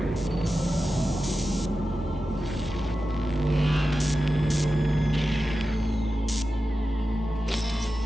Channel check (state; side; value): normal; both; correlation 0.92